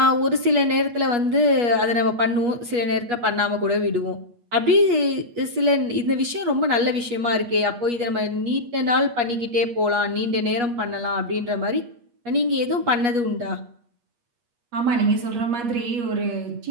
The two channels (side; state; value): left; late; 8.4 ms